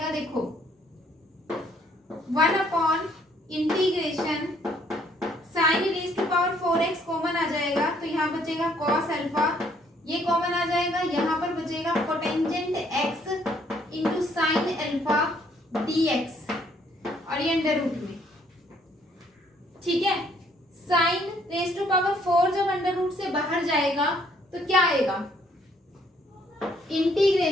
देखो 1 upon integration sine raise to power 4x common आ जाएगा तो यहाँ बचेगा कॉस अल्फा, ये कॉमन आ जाएगा, यहाँ पर बचेगा cotangent x into sine alpha dx और ये अंडर रूट में। ठीक है, साइन रेज टू पावर 4 जब अंडर रूट से बाहर जाएगा तो क्या आएगा,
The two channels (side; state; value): both; normal; correlation 0.65